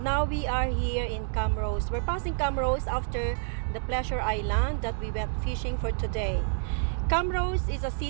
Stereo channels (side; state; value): left; silent; digital silence